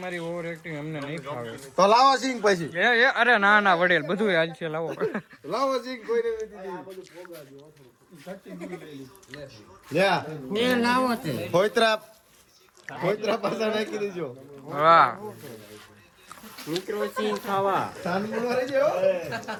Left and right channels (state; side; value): identical; both; correlation 1.00